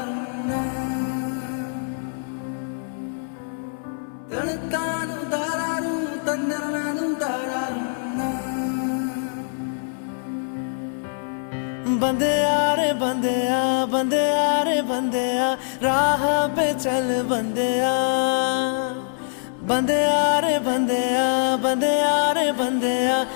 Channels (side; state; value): right; silent; 58 dB below the other